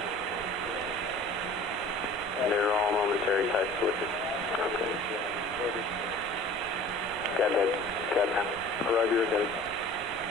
They're all momentary type switches. Okay. Got that. Got that. Roger, got it.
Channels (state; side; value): normal; both; correlation 0.44